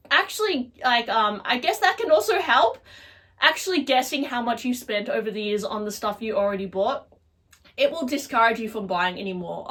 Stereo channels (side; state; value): both; identical; correlation 1.00